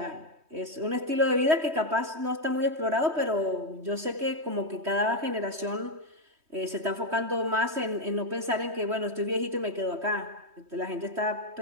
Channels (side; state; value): left; late; 3.2 ms